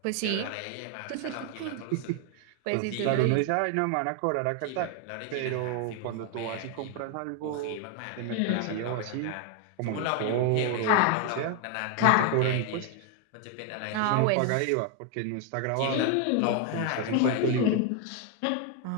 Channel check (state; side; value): different; both; correlation 0.01